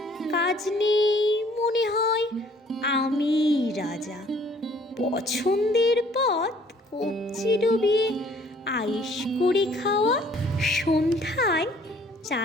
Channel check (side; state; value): both; normal; correlation 0.59